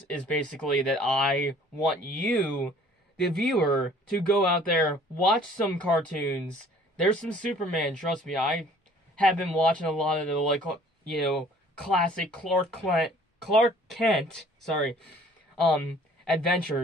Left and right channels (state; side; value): normal; both; correlation 0.54